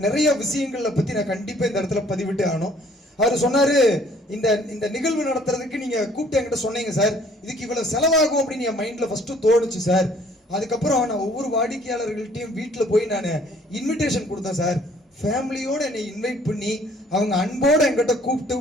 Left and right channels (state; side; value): normal; both; correlation 0.59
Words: நிறைய விஷயங்களை பத்தி நான் கண்டிப்பா இந்த இடத்துல பதிவிட்டு ஆகணும். அவர் சொன்னாரு, இந்த நிகழ்வு நடத்துறதுக்கு நீங்க கூப்பிட்டு என்கிட்ட சொன்னீங்க சார், இதுக்கு இவ்வளவு செலவாகும் அப்படின்னு என் மைண்ட்ல ஃபர்ஸ்ட் தோணுச்சு சார். அதுக்கப்புறம் நான் ஒவ்வொரு வாடிக்கையாளர்கள்ட்டையும் வீட்டில் போய் நான் இன்விடேஷன் கொடுத்தேன் சார். ஃபேமிலியோட என்னை இன்வைட் பண்ணி அவங்க அன்போட என்கிட்ட